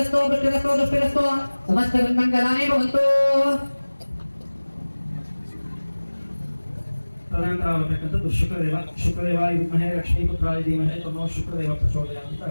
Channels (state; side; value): inverted; both; correlation -1.00